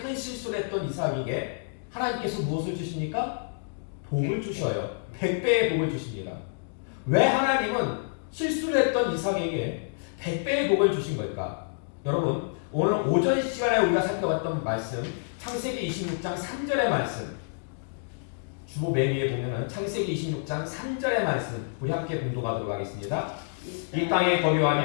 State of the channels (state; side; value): silent; right; digital silence